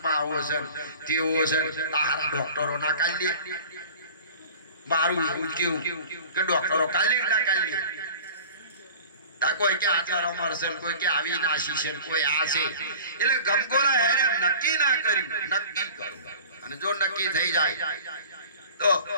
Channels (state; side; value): inverted; both; correlation -0.42